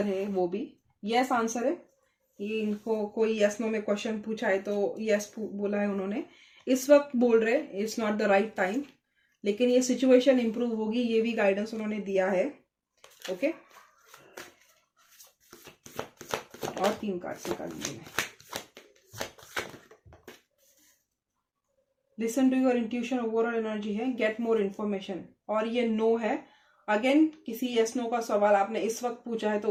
है, वो भी यस आंसर है। ये इनको कोई यस नो में क्वेश्चन पूछा है तो यस बोला है उन्होंने। इस वक्त बोल रहे it's not the right time, लेकिन ये सिचुएशन इंप्रूव होगी, ये भी गाइडेंस उन्होंने दिया है। ओके, और 3 कार्ड्स निकाल लीजिए। Listen to your intuition, overall energy है, गेट मोर इन्फॉर्मेशन, और ये नो है। अगेन किसी यस नो का सवाल आपने इस वक्त पूछा है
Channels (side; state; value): both; identical; correlation 1.00